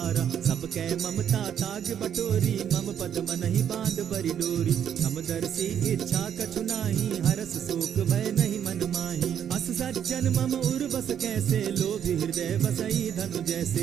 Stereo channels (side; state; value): left; quieter; 9.1 dB